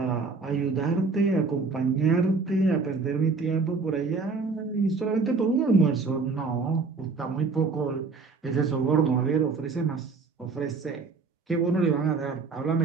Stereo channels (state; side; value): quieter; left; 4.4 dB